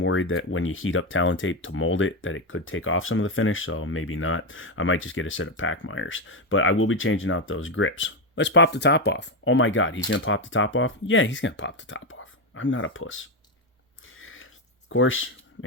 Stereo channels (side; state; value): both; normal; correlation 0.10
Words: that when you heat up Talon tape to mold it, that it could take off some of the finish, so maybe not. I might just get a set of Packmeyers, but I will be changing out those grips. Let's pop the top off. Oh my God, he's going to pop the top off? Yeah, he's going to pop the top off. I'm not a puss. Of course,